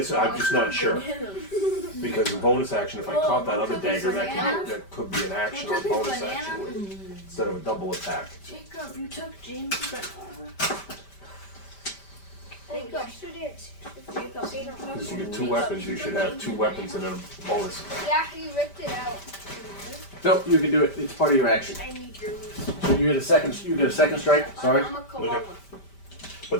just not sure. Because the bonus action, if I caught that other dagger, that could be an action or bonus action. instead of a double attack. Jacob, you took James' banana. Jacob. Yesterday at 6:50. Because you get 2 weapons, you should have 2 weapons and a bonus. Yeah, he ripped it out. Nope, you can do it. It's part of your action. I need yours. So you get a second strike. Sorry. I'm a koala. Okay. But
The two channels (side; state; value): right; late; 5.1 ms